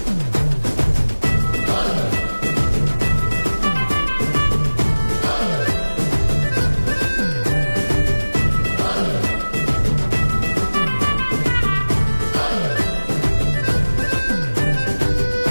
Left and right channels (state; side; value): inverted; both; correlation -1.00